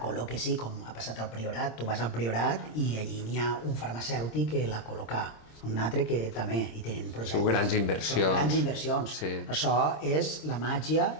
col·loque sí, com ha passat al Priorat. Tu vas al Priorat i allí n'hi ha un farmacèutic que la col·loca, un altre que també hi tenen projectes. Són grans inversions. Grans inversions. Sí. Això és la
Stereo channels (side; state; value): right; late; 26 ms